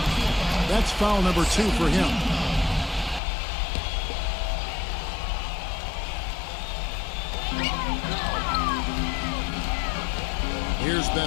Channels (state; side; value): drops out; right; at 3.2 s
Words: That's foul number 2 for him. Here's